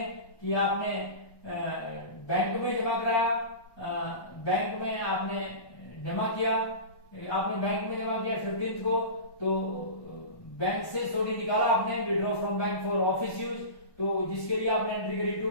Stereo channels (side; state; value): right; late; 1.1 ms